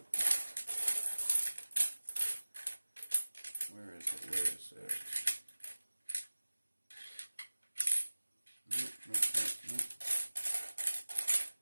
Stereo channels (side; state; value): both; inverted; correlation -1.00